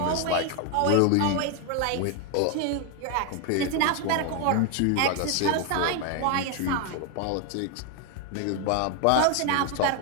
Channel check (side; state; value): both; different; correlation 0.01